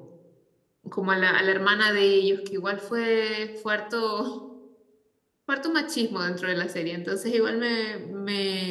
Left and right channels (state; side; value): identical; both; correlation 1.00